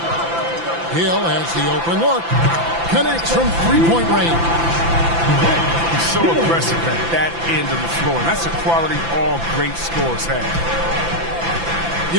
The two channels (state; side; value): late; left; 5.9 ms